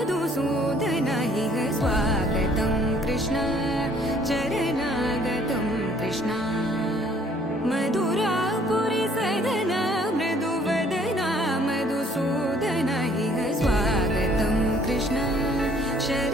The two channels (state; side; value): normal; both; correlation 0.60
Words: इह स्वागतं कृष्ण चरणागतं कृष्ण मधुरापुरी सदन मृदुवदन मधुसूदन इह स्वागतं कृष्ण